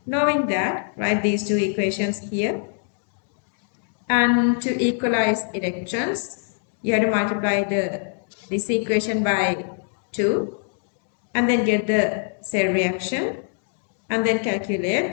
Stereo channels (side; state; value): right; silent; 63 dB below the other